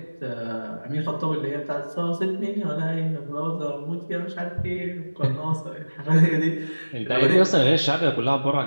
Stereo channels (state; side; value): inverted; both; correlation -1.00